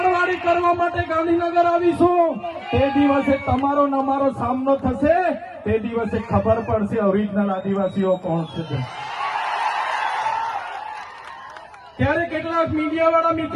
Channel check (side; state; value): both; identical; correlation 1.00